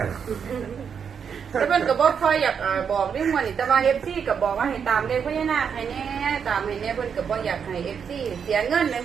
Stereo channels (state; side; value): quieter; left; 7.0 dB